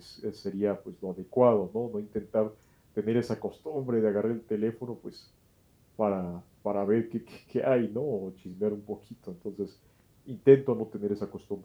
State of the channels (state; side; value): identical; both; correlation 1.00